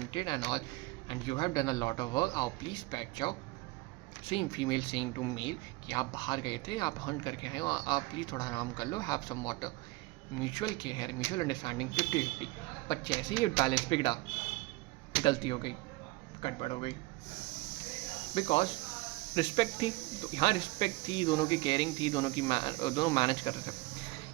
and all and you have done a lot of work, आओ please बैठ जाओ। Saying female saying to male कि आप बाहर गए थे, आप हंट करके आए हो, आप प्लीज़ थोड़ा आराम कर लो, have some water. Mutual care, mutual understanding 50-50। पर जैसे ही बैलेंस बिगड़ा, गलती हो गई, गड़बड़ हो गई, बिकॉज रिस्पेक्ट थी, तो यहाँ रिस्पेक्ट थी, दोनों की केयरिंग थी, दोनों मैनेज कर रहे थे।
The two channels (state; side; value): quieter; left; 22.1 dB